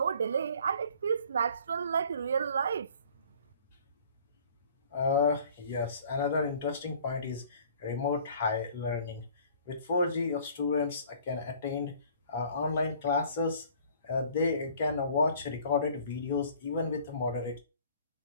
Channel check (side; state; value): both; inverted; correlation -0.52